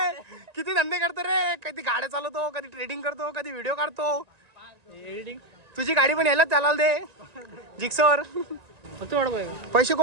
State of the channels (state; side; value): late; left; 1.9 ms